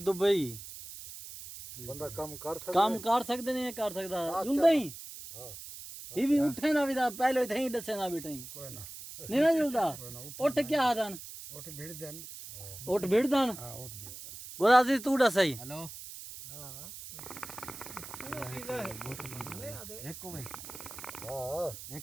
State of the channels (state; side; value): noise; right; hiss, 12 dB below the sound